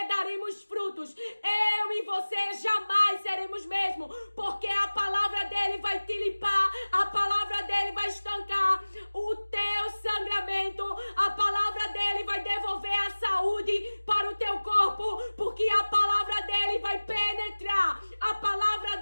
daremos frutos, eu e você jamais seremos mesmo, porque a palavra dele vai te limpar, a palavra dele vai estancar o teu sangramento, a palavra dele vai devolver a saúde para o teu corpo, porque a palavra dele vai penetrar, a palavra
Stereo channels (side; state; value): both; inverted; correlation -1.00